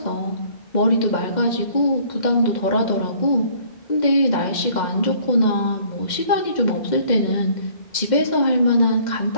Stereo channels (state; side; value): late; right; 2.1 ms